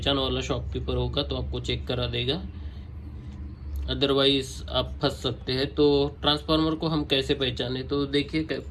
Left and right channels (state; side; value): identical; both; correlation 1.00